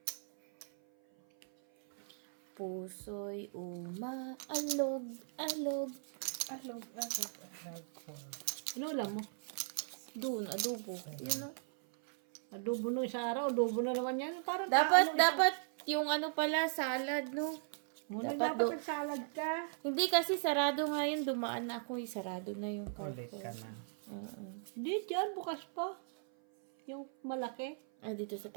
Puso'y umaalog, alog. Alog. Ano ulam mo? Doon, adobo. Yun o. Adobo nung isang araw. Adobo na naman yan. Parang Dapat yung ano pala, salad, no? Muna dapat dapat nagsalad ka. Hindi kasi sarado nga yun. Dumaan na ako, sarado na yung Ulit carton. ka na. Hindi dyan. Bukas pa. Yung malaki. Dito sa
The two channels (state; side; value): silent; left; 53 dB below the other